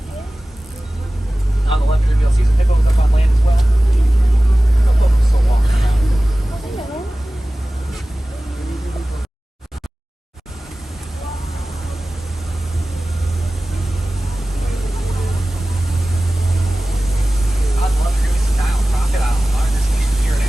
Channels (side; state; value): both; normal; correlation 0.97